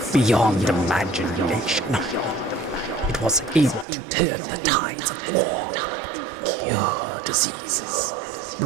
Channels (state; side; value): drops out; left; at 3.9 s